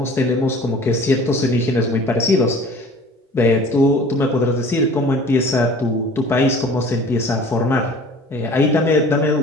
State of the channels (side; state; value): both; normal; correlation 0.46